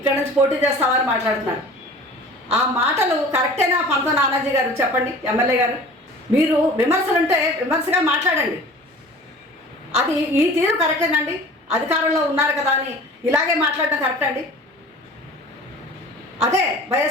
నుంచి పోటీ చేస్తావా అని మాట్లాడుతున్నారు. ఆ మాటలు కరెక్టేనా పంతం నానాజీ గారు? చెప్పండి ఎమ్మెల్యే గారు. మీరు విమర్శలుంటే విమర్శగా మాట్లాడండి. అది ఈ తీరు కరెక్టేనండి? అధికారంలో ఉన్నారు కదా అని ఇలాగే మాట్లాడటం కరెక్ట్ అండి? అదే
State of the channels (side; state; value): both; normal; correlation 0.43